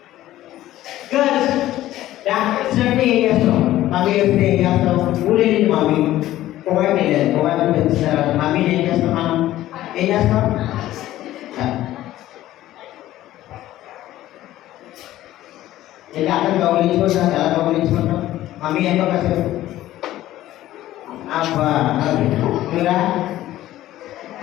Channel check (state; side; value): quieter; right; 14.5 dB